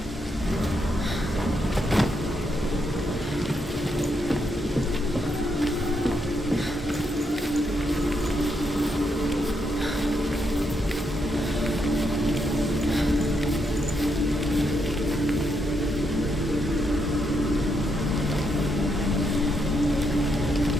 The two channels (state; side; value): normal; both; correlation 0.79